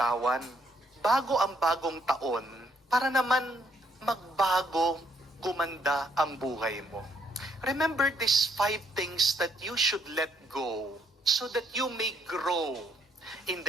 bago ang bagong taon para naman magbago, gumanda ang buhay mo. Remember these 5 things that you should let go so that you may grow in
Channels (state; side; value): normal; both; correlation 0.70